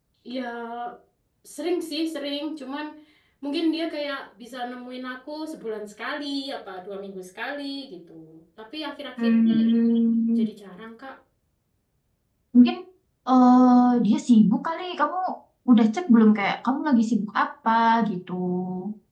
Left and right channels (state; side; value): identical; both; correlation 1.00